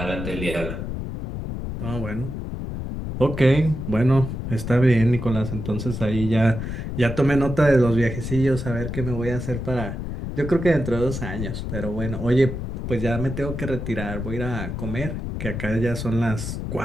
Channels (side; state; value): left; noise; rumble, 5 dB below the sound